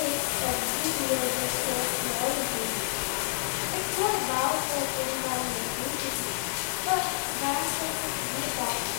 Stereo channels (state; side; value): silent; right; digital silence